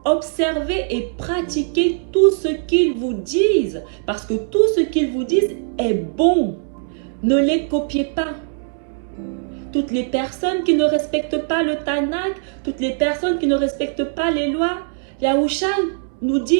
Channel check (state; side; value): silent; left; 65 dB below the other